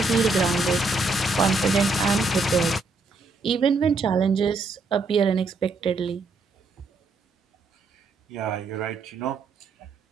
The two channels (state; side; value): quieter; left; 3.5 dB